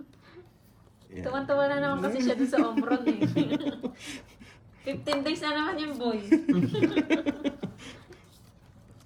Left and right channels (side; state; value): both; identical; correlation 1.00